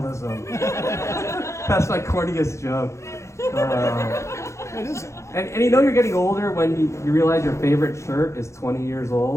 That's my corniest joke. And you know you're getting older when you realize your favorite shirt is 20 years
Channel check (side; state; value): right; late; 0.14 ms